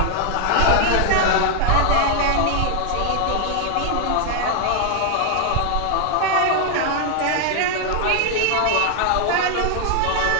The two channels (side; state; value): both; different; correlation 0.00